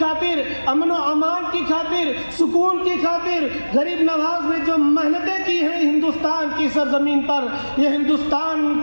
خاطر، امن و امان کی خاطر، سکون کی خاطر غریب نواز نے جو محنتیں کی ہیں ہندوستان کی سرزمین پر، یہ ہندوستان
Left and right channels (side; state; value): both; inverted; correlation -1.00